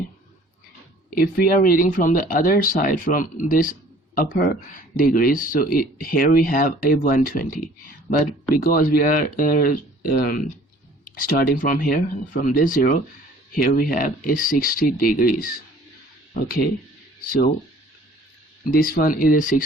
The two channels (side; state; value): both; normal; correlation 0.52